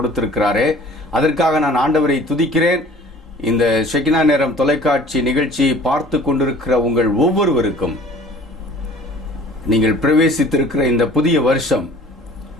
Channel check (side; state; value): both; normal; correlation 0.49